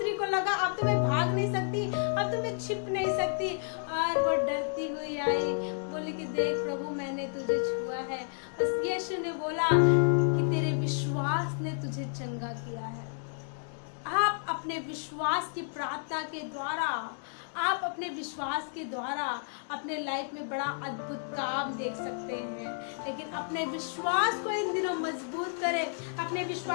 को लगा अब तो मैं भाग नहीं सकती, अब तो मैं छिप नहीं सकती, और वो डरती हुई आई, बोली कि देख प्रभु, मैंने तुझे छुआ है। बस यीशु ने बोला कि तेरे विश्वास ने तुझे चंगा किया है। आप अपने विश्वास की प्रार्थना के द्वारा, आप अपने विश्वास के द्वारा अपने लाइफ में बड़ा अद्भुत काम देख सकते हैं। लेकिन अपने विश्वास को इन दिनों मजबूत करें, अपने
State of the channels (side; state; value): right; silent; digital silence